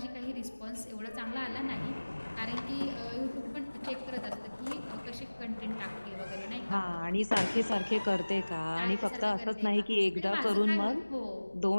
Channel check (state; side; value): inverted; both; correlation -1.00